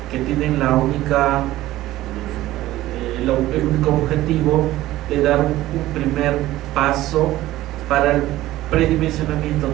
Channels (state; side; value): quieter; left; 15.7 dB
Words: que tienen el único objetivo de dar un primer paso para el predimensionamiento